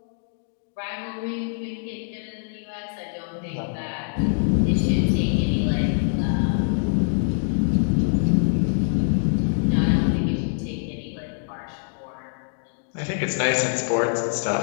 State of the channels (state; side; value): silent; right; digital silence